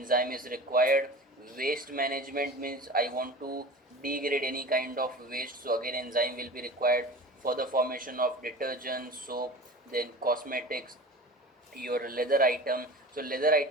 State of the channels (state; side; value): normal; both; correlation 0.36